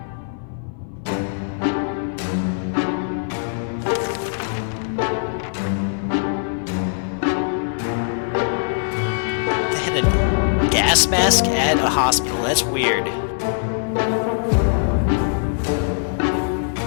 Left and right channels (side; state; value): right; silent; 58 dB below the other